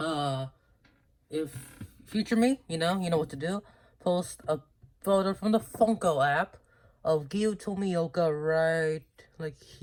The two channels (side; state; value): both; identical; correlation 1.00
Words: if future me, you know what to do. Post a photo from the Funko app of Gyu Tomioka right, like